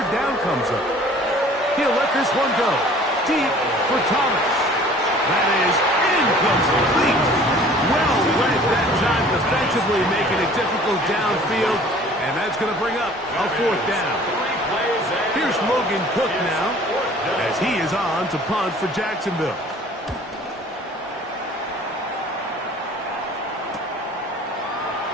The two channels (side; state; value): both; normal; correlation 0.50